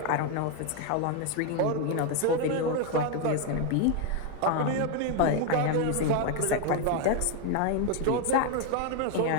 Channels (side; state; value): both; different; correlation 0.01